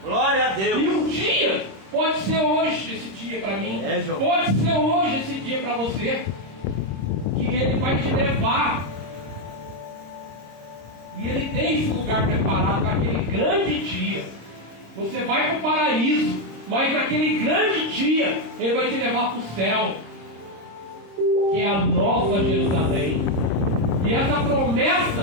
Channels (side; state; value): left; late; 26 ms